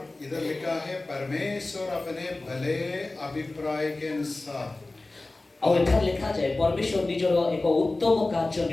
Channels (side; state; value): right; quieter; 3.0 dB